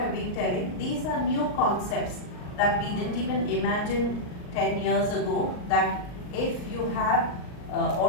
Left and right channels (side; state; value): right; late; 39 ms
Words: been telling. These are new concepts that we didn't even imagine 10 years ago, that if you have